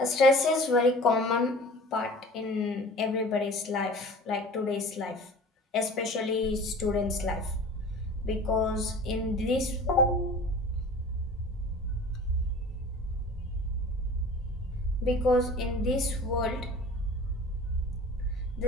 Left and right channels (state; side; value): normal; both; correlation 0.41